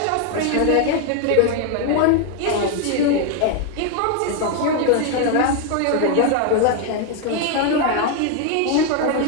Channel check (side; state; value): both; different; correlation 0.01